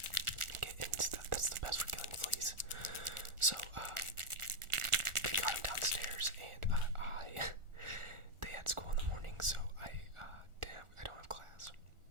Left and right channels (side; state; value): left; late; 1.4 ms